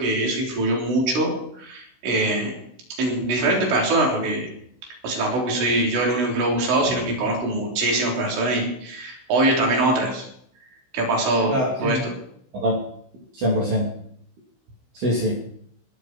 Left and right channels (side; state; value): left; late; 16 ms